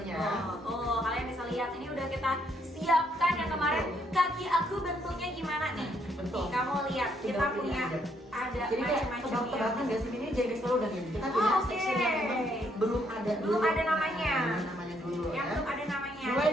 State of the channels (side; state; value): both; normal; correlation 0.72